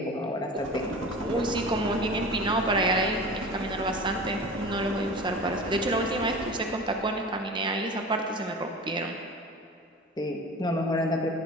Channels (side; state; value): both; normal; correlation 0.35